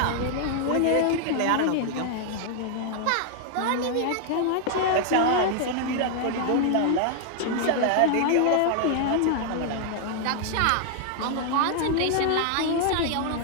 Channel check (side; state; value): both; different; correlation 0.00